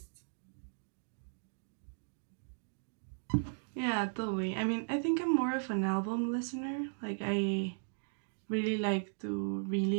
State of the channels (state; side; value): silent; left; digital silence